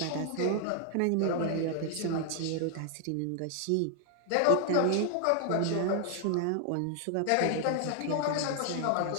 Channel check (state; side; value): different; both; correlation 0.00